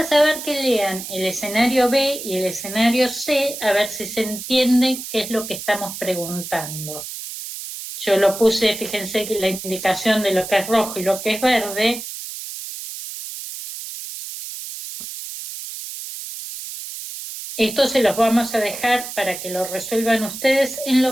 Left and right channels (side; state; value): right; noise; hiss, 9 dB below the sound